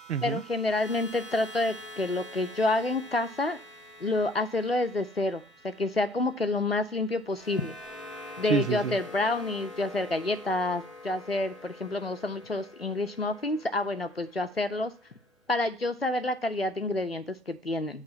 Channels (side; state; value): both; normal; correlation 0.57